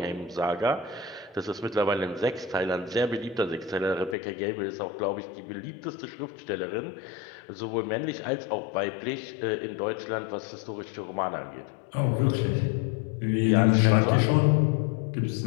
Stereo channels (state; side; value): drops out; right; at 4.2 s